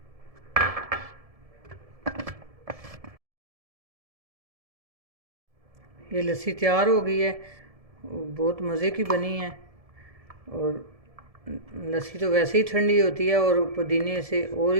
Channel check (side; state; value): left; late; 1.7 ms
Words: ये लस्सी तैयार हो गई है, बहुत मज़े की बनी है। और लस्सी तो वैसे ही ठंडी होती है, और पुदीने से और